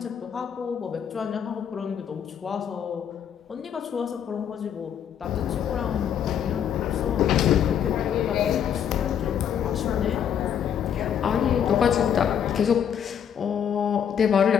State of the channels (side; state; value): right; quieter; 8.7 dB